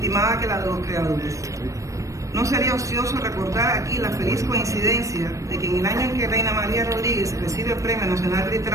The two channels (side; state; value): left; late; 0.15 ms